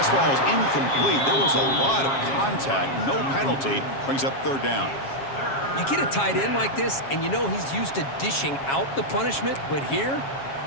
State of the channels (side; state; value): right; late; 7.3 ms